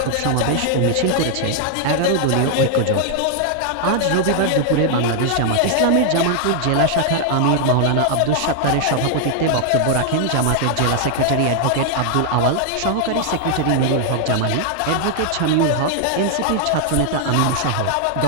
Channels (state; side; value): different; both; correlation 0.00